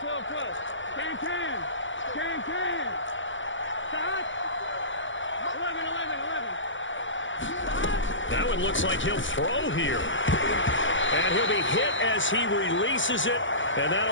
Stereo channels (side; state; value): right; late; 0.56 ms